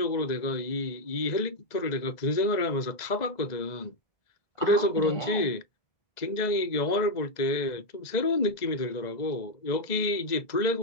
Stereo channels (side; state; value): right; late; 2.0 ms